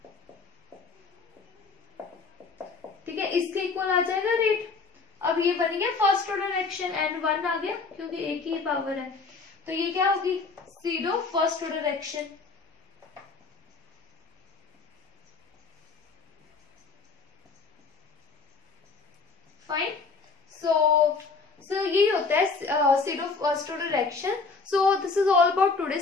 ठीक है, इसके इक्वल आ जाएगा रेट। अब ये बन गया फर्स्ट ऑर्डर रिएक्शन, एंड 1 आ गया क्योंकि एक ही पावर है, तो ये क्या होगी, pseudo first order reaction. Fine, so यही होता है pseudo first order reaction. So this is all about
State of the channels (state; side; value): quieter; right; 4.5 dB